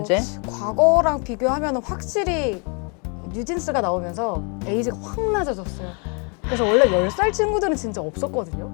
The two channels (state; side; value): quieter; right; 35.9 dB